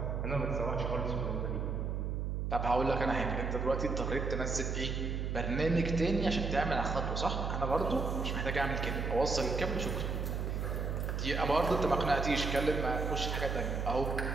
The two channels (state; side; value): noise; right; hum, 1 dB below the sound